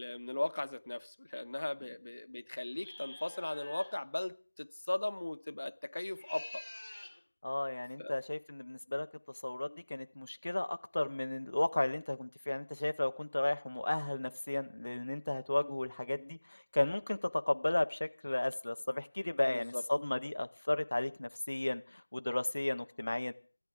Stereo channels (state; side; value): inverted; both; correlation -1.00